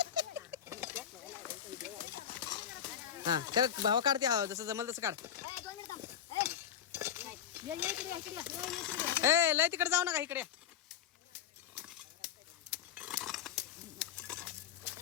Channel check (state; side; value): quieter; right; 8.9 dB